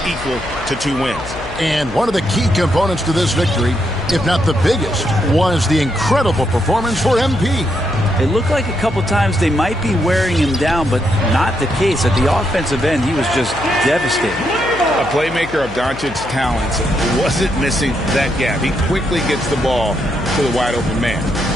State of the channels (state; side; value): noise; left; hum, 13 dB below the sound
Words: equal to 2 wins. And one of the key components to this victory, if not the biggest, was the incredible performance for MP. It looked like a couple times they might be wearing him down, but not the case. At the offensive end, he was just devastating. A playmaker of Doncic's talents wasn't missing that gap. He quickly gets the ball to the wide open man.